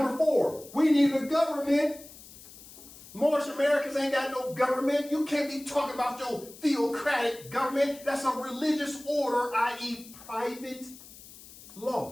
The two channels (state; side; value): noise; left; hiss, 19 dB below the sound